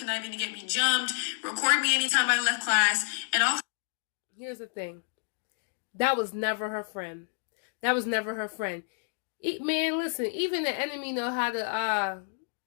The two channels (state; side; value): silent; right; 58 dB below the other